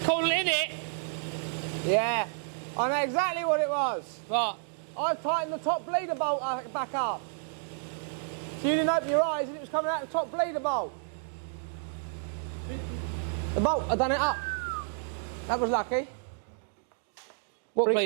in it. Yeah, I know exactly what it was. Right. I've tightened the top bleeder bolt back up. So you didn't open your eyes and it was coming out the top bleeder bolt. The bolt, I done it up. That was lucky. What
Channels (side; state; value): left; silent; digital silence